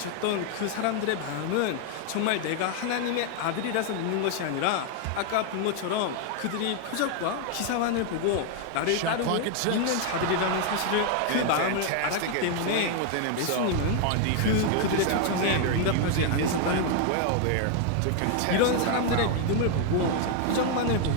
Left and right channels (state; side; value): different; both; correlation 0.00